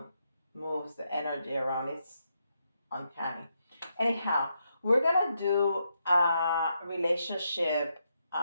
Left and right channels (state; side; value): inverted; both; correlation -0.81